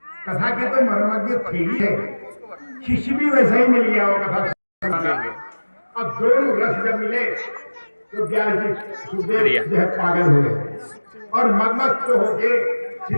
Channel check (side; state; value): both; inverted; correlation -1.00